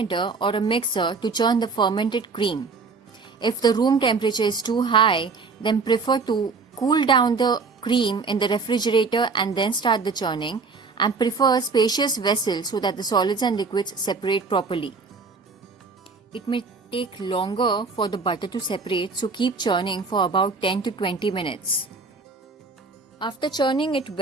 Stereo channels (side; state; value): left; quieter; 4.3 dB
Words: or a mixer to churn the fermented cream. If the room temperature is too high, then prefer to cool down the cream in the refrigerator and then start the churning, and prefer a spacious vessel so that the solids and liquids separate properly. It may take longer for the butter to separate, so keep churning for about 10 to 20 minutes. After churning it